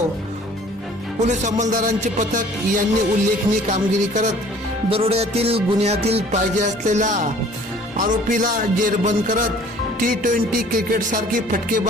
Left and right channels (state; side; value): normal; both; correlation 0.52